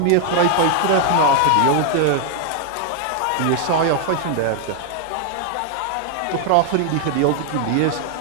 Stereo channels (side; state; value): both; different; correlation 0.00